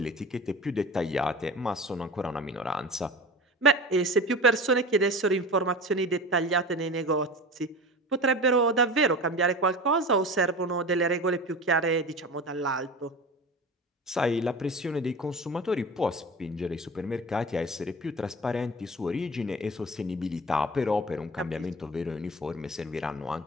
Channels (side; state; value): both; normal; correlation 0.34